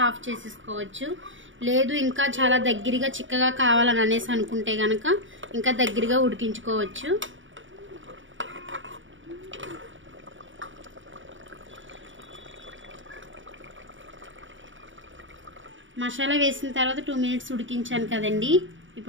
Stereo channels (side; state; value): left; late; 0.56 ms